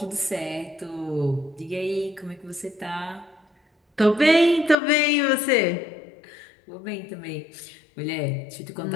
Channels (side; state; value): right; drops out; at 4.8 s